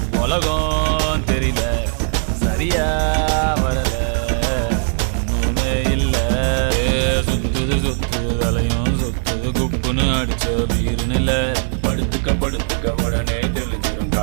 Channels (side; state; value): left; silent; digital silence